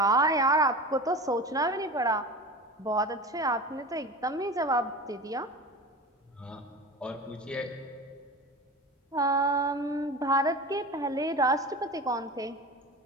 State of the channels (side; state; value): both; normal; correlation 0.32